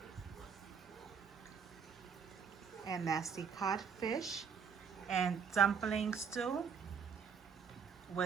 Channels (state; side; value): quieter; left; 6.6 dB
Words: And that's the codfish and dumpling stew